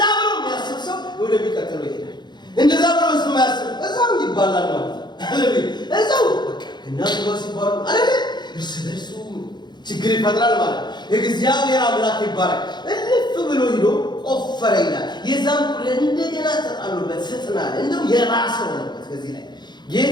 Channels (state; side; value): late; right; 0.21 ms